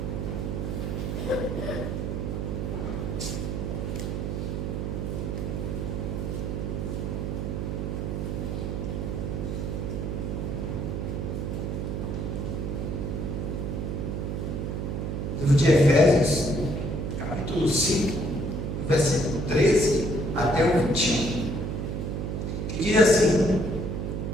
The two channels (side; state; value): right; noise; hum, 2 dB below the sound